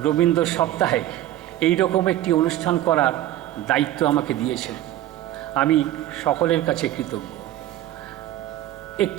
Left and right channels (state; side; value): quieter; left; 13.7 dB